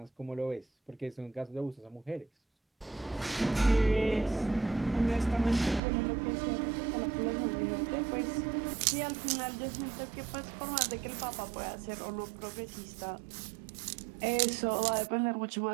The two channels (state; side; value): drops out; left; at 5.8 s